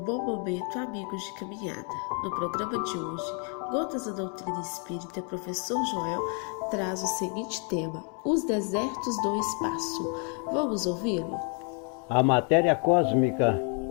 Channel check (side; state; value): right; quieter; 39.3 dB